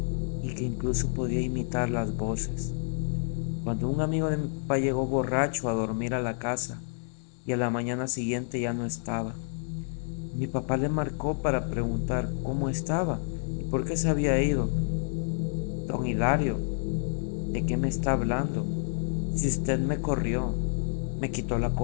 y que incluso podía imitar las voces. Cuando un amigo de mi papá llegó borracho a dormir a la casa y a la mañana siguiente ya no estaba, mi papá le marcó para preguntar cómo estaba y por qué se había ido. Don Hilario, ¿de qué me está hablando? Si usted me corrió, me quitó la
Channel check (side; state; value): right; silent; digital silence